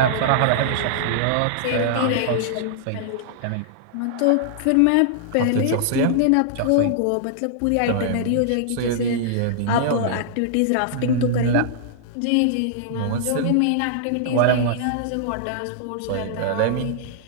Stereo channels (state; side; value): different; both; correlation -0.01